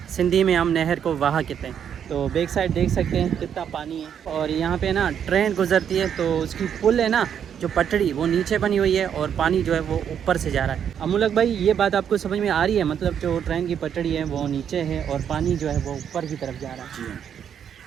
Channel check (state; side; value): quieter; left; 8.5 dB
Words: सिंधी में हम नहर को वाहा कहते हैं। तो बैक साइड देख सकते हैं कितना पानी है। और यहाँ पे ना ट्रेन गुजरती है, तो उसकी पुल है ना, जो पटड़ी, वो नीचे बनी हुई है और पानी जो है वो ऊपर से जा रहा है। अमूलक भाई, ये बात आपको समझ में आ रही है? मतलब जो ट्रेन की पटड़ी है वो नीचे है और पानी जो है वो ऊपर की तरफ जा रहा है।